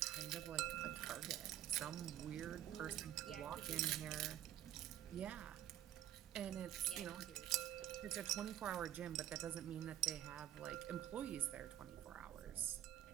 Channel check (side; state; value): left; quieter; 12.2 dB